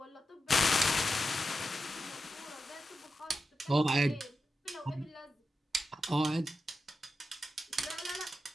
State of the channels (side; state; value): both; normal; correlation 0.90